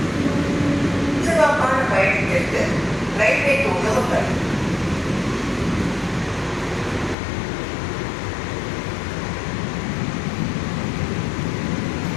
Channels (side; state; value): right; drops out; at 7.2 s